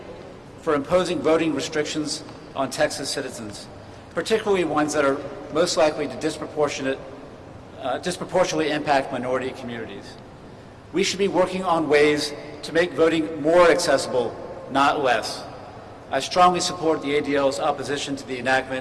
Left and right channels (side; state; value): both; identical; correlation 1.00